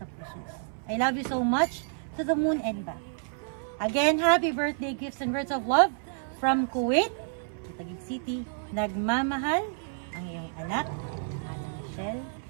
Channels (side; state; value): left; silent; 58 dB below the other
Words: puso. I love you so much to the moon and back. Again, happy birthday gifts and words of love from Kuwait, Taguig City. Nagmamahal ang iyong anak, Ana Michelle.